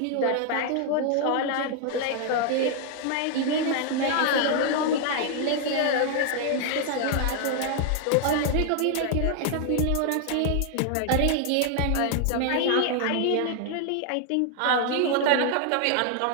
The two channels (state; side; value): different; both; correlation 0.00